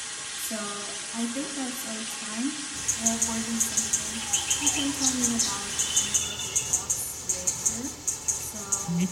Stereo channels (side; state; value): both; identical; correlation 1.00